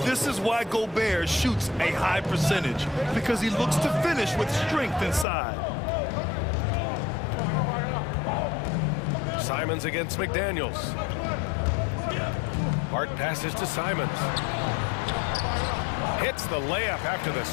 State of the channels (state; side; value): drops out; right; at 5.2 s